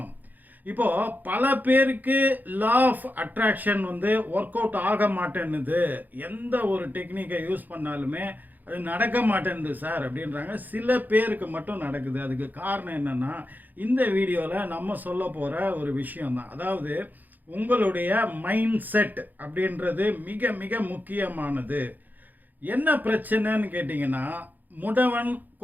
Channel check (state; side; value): late; left; 0.084 ms